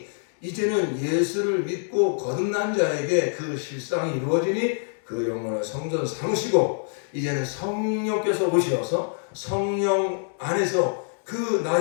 이제는 예수를 믿고 거듭난 자에게 그 실상이 이루어지니 그 영혼을 성전 삼으시고, 이제는 성령께서 오셔서 성령 안에서 그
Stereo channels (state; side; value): silent; right; 61 dB below the other